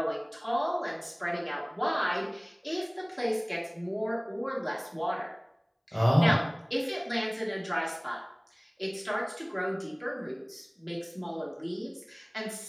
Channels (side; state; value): both; identical; correlation 1.00